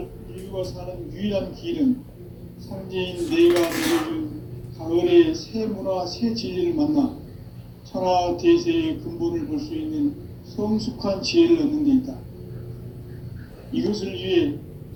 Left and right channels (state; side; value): identical; both; correlation 1.00